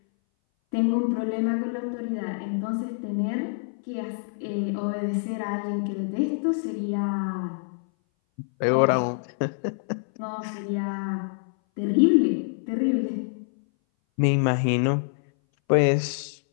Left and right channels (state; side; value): silent; right; 59 dB below the other